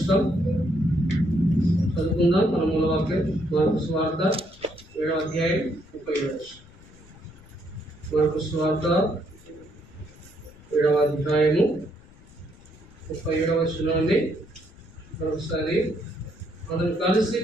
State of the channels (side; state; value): left; noise; rumble, 23 dB below the sound